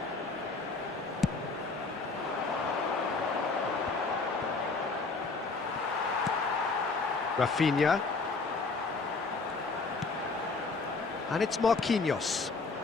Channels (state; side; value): quieter; right; 4.1 dB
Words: Rafinha. And it's Marquinhos.